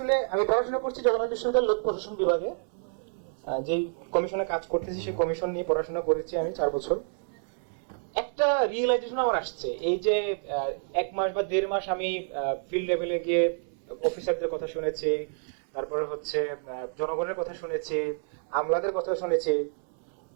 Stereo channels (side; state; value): left; silent; 59 dB below the other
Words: আমি পড়াশোনা করছি জগন্নাথ বিশ্ববিদ্যালয়ের লোক প্রশাসন বিভাগে, যেই কমিশনে কাজ করতেছি সেই কমিশন নিয়ে পড়াশোনা করেছি আমি 4 বছর। একটা রিয়েলাইজেশন আমার আসছে, এই যে 1 মাস বা 1.5 মাস আমি ফিল্ড লেভেলে গিয়ে অফিসারদের কথা শুনেছি, তারপরে হচ্ছে জনগণের কথা শুনেছি, আমলাদের কথা শুনেছি।